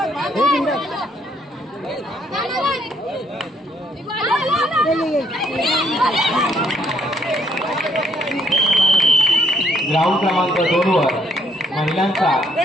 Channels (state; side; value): normal; both; correlation 0.69